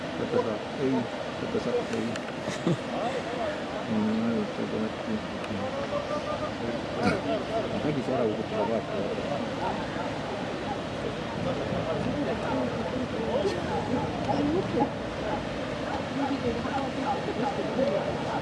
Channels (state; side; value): identical; both; correlation 1.00